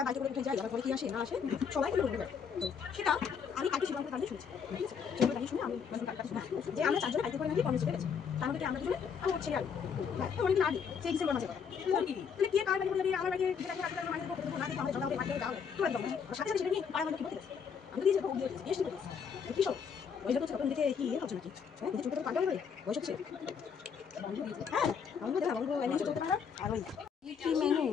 বাইকে করে উঠে যাই, আবার পরে কি আসে না আসে সবাই সেটা আমি কালকে শিবঙ্গের কারণে শুনছি। ঠিক আছে, সেগুলো কাহিনী শুনে আমি যে আমরা চারজনে বাইকে করে নাকি কর্মসূচিতে গেছি, তার মধ্যে আমরা দুজনে আমার ছেলে আর অনেকদিন আগে সেই ডিসেম্বর মাসে কথা। তাহলে কে কার বাড়ি বলে আমার বাড়ি মানে আমাদের জল বাড়ি দাও তোরা দাও সাথে সাথে সেটা নিয়ে পাড়া মানে কি বলতে গেছে। আমি তো দিয়েছি বেশ করে কি সব ওই জন্য তখন দিকে কি হচ্ছে নাকি নিজে চলতে পারবে বয়স হচ্ছে। হ্যাঁ বন্ধু দেখা বন্ধু এমনি চলতে পারো। আর ওই কি মেনু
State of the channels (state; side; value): quieter; right; 6.7 dB